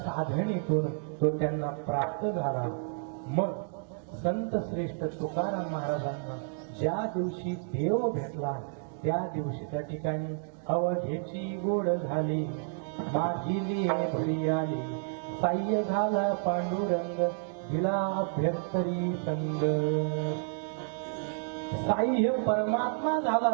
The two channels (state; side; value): silent; left; digital silence